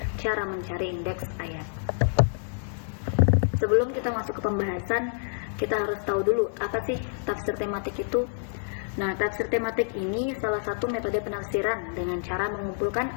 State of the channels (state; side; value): silent; right; digital silence